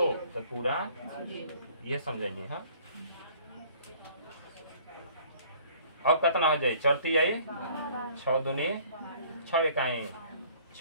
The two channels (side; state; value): both; inverted; correlation -0.55